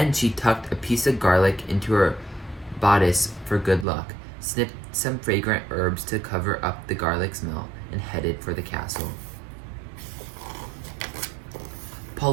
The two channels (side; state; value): left; drops out; at 3.9 s